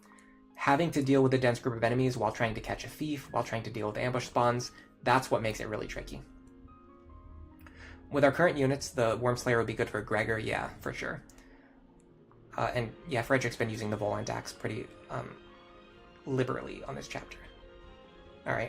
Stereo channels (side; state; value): both; identical; correlation 1.00